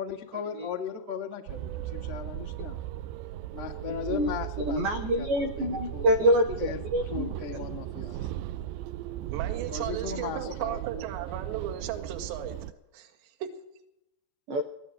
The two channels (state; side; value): late; left; 14 ms